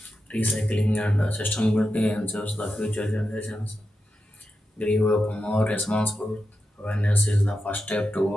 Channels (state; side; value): normal; both; correlation 0.89